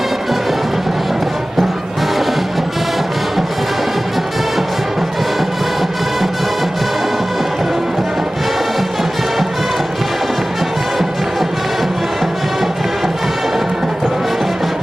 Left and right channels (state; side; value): normal; both; correlation 0.97